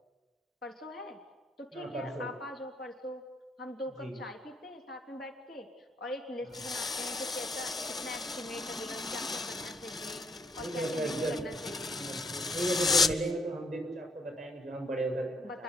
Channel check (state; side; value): normal; both; correlation 0.70